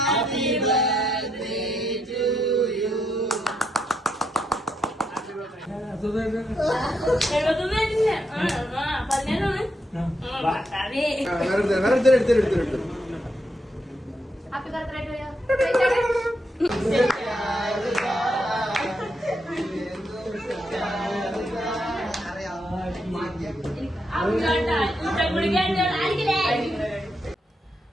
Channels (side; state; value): both; normal; correlation 0.79